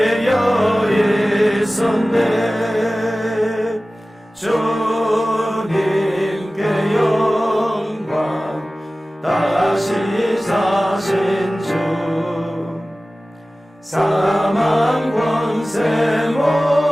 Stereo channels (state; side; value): normal; both; correlation 0.97